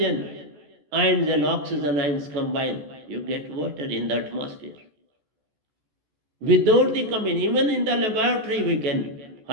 ions and oxygen ions combine, you get water in the atmosphere. Without the combination, even in the laboratory we can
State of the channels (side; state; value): left; late; 14 ms